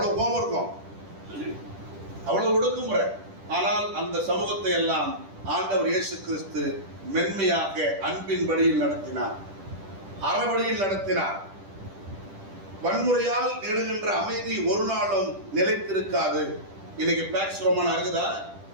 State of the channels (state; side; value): late; left; 10 ms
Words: கோபம் இருக்கும், அவ்வளவு ஒடுக்குமுறை. ஆனால் அந்த சமூகத்தை எல்லாம் ஆண்டவர் இயேசு கிறிஸ்து மென்மையாக அன்பின் வழியில் நடத்தினார், அறவழியில் நடத்தினார். வன்முறையால் நெடுகின்ற அமைதி ஒரு நாளும் நிலைத்திருக்காது. இன்னைக்கு பேக்ஸ் ரோமானா இருக்குதா?